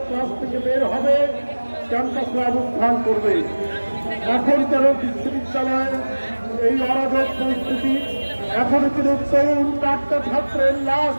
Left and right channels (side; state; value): both; inverted; correlation -1.00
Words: ক্লাস থেকে বের হবে, ক্যাম্পাসে অবস্থান করবে। এখন কেন বিশ্ববিদ্যালয়ের এই অরাজক পরিস্থিতি? এখনো কিন্তু তরুণ চারটা ছাত্রের লাশ